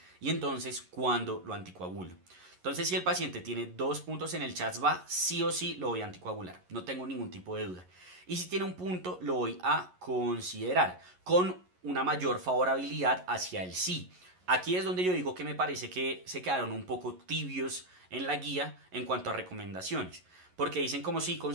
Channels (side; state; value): left; late; 11 ms